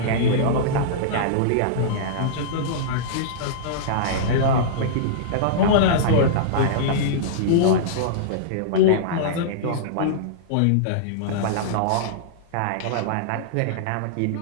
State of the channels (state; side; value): different; both; correlation -0.03